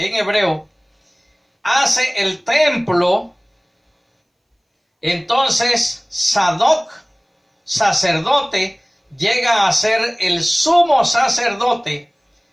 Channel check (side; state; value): both; identical; correlation 1.00